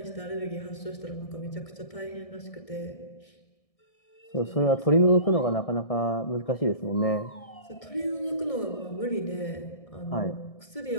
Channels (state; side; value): late; right; 1.7 ms